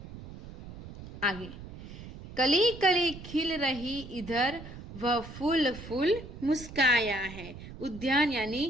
आगे, कली कली खिल रही इधर वह फूल फूल मुस्काया है। उद्यान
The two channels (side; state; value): right; noise; rumble, 13 dB below the sound